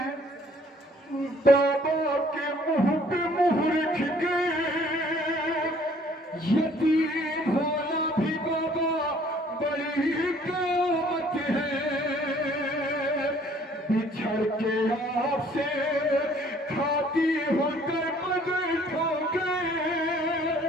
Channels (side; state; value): both; normal; correlation 0.58